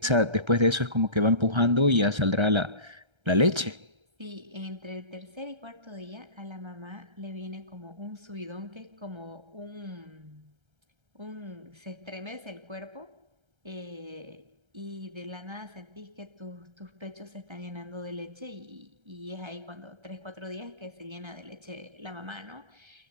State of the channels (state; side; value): late; left; 1.3 ms